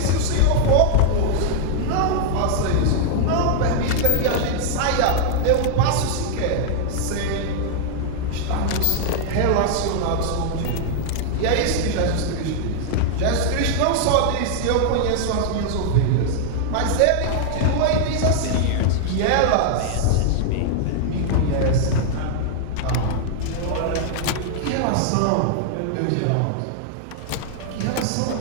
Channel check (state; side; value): different; both; correlation -0.01